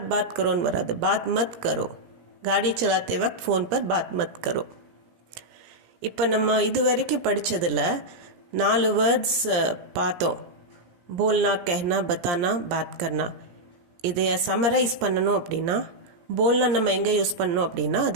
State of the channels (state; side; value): late; left; 17 ms